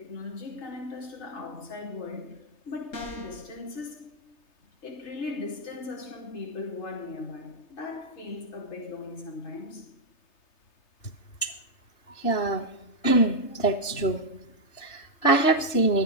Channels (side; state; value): right; late; 3.3 ms